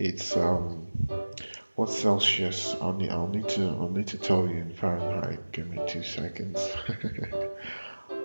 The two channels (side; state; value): both; inverted; correlation -1.00